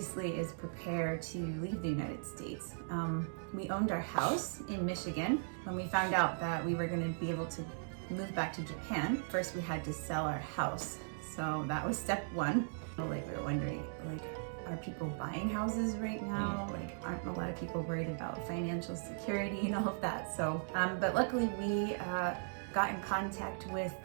is prepare to leave the United States. We owned our house in Michigan. When we found out that we were going to be able to move back to Japan, first we had to sell our house. So that was step one. We were wondering, are people buying houses right now? Aren't a lot of people worried about financial security and all of that? So, but luckily we got in contact with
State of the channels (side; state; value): left; silent; digital silence